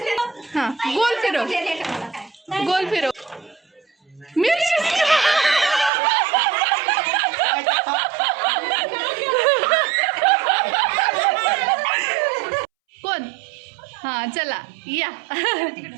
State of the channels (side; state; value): left; drops out; at 5.9 s